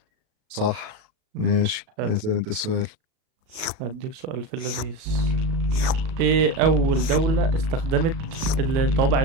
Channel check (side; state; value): left; late; 37 ms